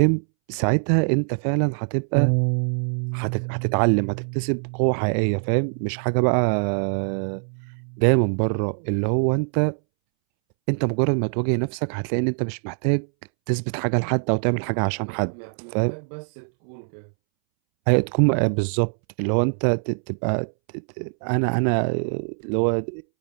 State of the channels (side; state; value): left; silent; 63 dB below the other